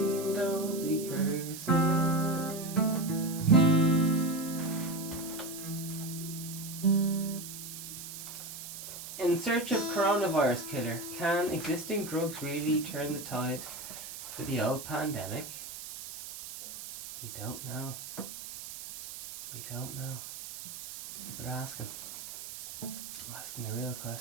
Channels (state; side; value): noise; right; hiss, 10 dB below the sound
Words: don't be cursing. In search of coronavirus killer, can existing drugs really turn the tide for the old pandemic? We don't know. We don't know. People are asking. I'm asking the real